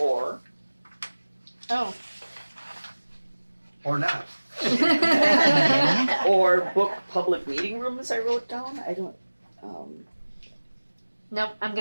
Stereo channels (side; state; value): both; inverted; correlation -1.00